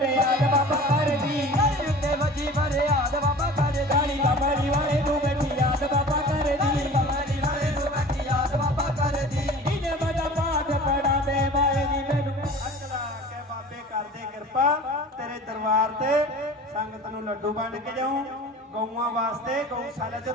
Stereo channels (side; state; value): both; normal; correlation 0.41